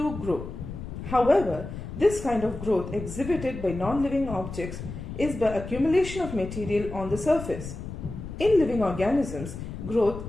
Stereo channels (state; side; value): noise; left; rumble, 9 dB below the sound